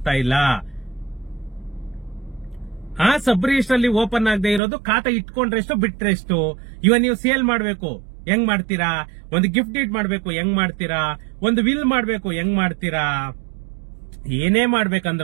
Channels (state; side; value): drops out; left; at 4.6 s